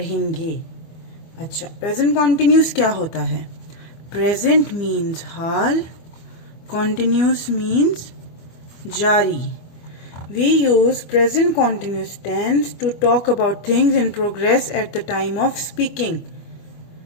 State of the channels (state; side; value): late; right; 25 ms